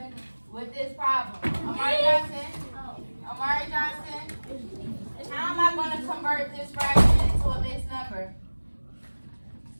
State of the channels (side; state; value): both; inverted; correlation -1.00